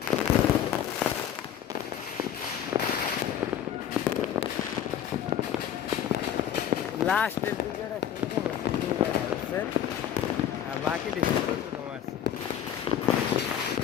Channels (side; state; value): right; quieter; 9.8 dB